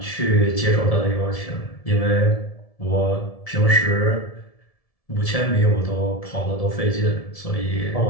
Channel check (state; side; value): late; right; 1.7 ms